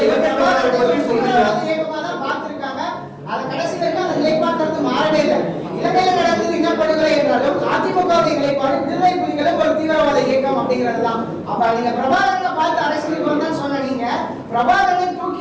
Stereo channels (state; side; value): identical; both; correlation 1.00